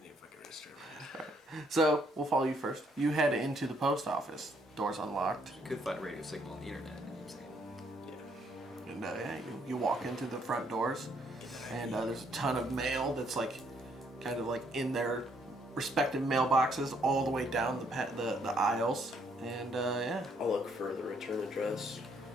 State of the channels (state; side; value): normal; both; correlation 0.69